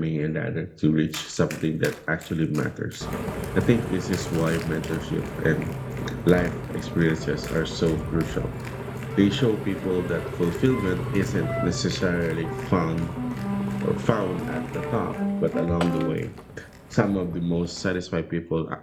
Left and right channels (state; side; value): identical; both; correlation 1.00